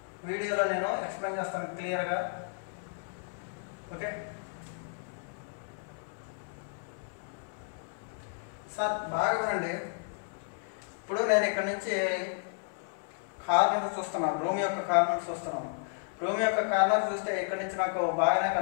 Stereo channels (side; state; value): right; silent; 56 dB below the other